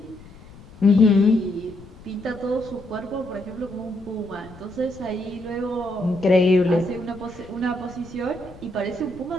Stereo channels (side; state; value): left; noise; rumble, 20 dB below the sound